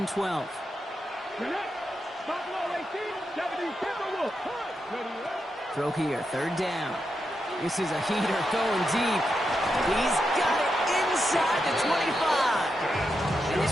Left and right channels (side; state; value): both; normal; correlation 0.86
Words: 12. Throw here, 3rd down. This is a heater going deep. He's got it inside the 25. And